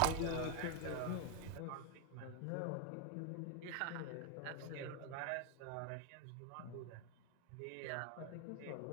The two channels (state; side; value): different; both; correlation 0.01